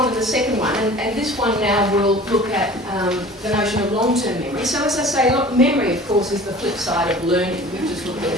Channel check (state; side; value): normal; both; correlation 0.43